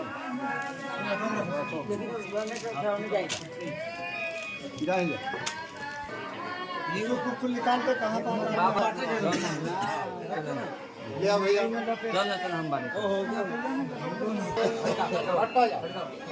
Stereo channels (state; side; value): identical; both; correlation 1.00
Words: जाएंगे कुछ निकाल के कहाँ लिया भैया चल हम बारे